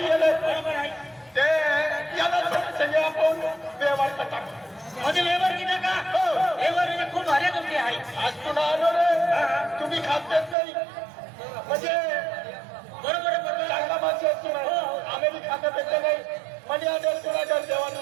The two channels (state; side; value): drops out; left; at 10.6 s